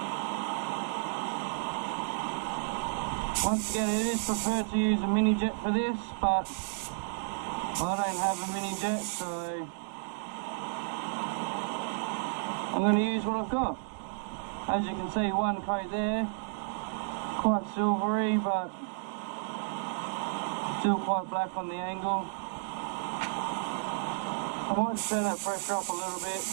Once again, it is preferred to use a mini jet for this, but I don't have a mini jet, so I'm going to use what I've got. As you can see, one coat there, quite silvery, but still quite black on the angle. I might turn that pressure up a little bit.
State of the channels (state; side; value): silent; left; digital silence